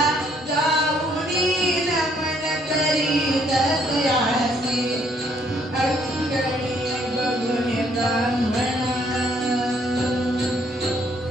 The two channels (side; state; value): both; normal; correlation 0.66